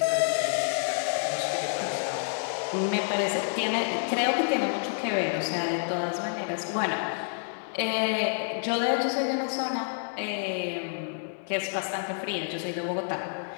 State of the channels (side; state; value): right; silent; digital silence